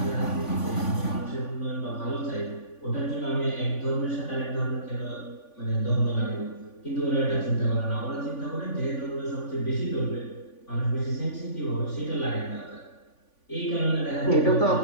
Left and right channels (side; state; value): right; late; 3.5 ms